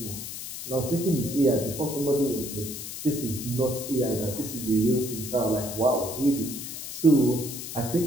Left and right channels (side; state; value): left; noise; hiss, 8 dB below the sound